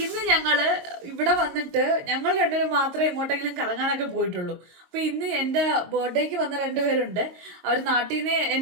ഇന്ന് ഞങ്ങള് ഇവിടെ വന്നിട്ട് ഞങ്ങൾ രണ്ടുപേരും മാത്രമേ എങ്ങോട്ടെങ്കിലും കറങ്ങാനൊക്കെ പോയിട്ടുള്ളൂ. അപ്പൊ ഇന്ന് എന്റെ ബർത്ത്ഡേക്ക് വന്ന രണ്ടുപേരുണ്ട്. അവർ നാട്ടിൽ നിന്ന്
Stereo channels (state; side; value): late; left; 22 ms